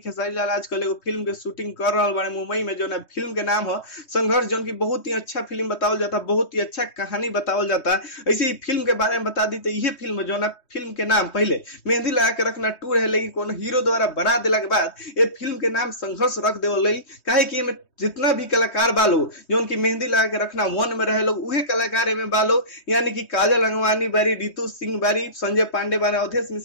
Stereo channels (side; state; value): right; late; 3.2 ms